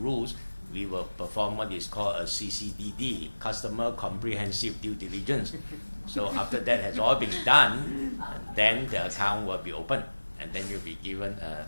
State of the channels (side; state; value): both; inverted; correlation -1.00